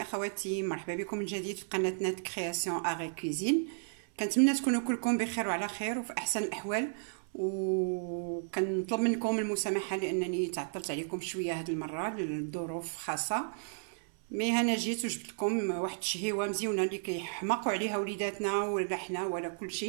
اخواتي، مرحبا بكم من جديد في قناتنا كرياسيون اغي كوزين. كنتمنى تكونوا كلكم بخير وعلى خير وفي احسن الاحوال، وكنطلب منكم المسامحه لانني تعطلت عليكم شويه هذه المره لظروف خاصه. مي انا جيت وجبت لكم واحد الشهيوه مزيونه اللي كيحماقوا عليها وليداتنا ولا حنا ولا كل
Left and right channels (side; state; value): left; silent; 56 dB below the other